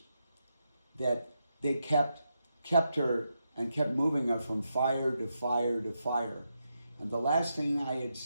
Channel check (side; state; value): both; inverted; correlation -0.84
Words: that they kept her and kept moving her from fire to fire to fire. And the last thing I had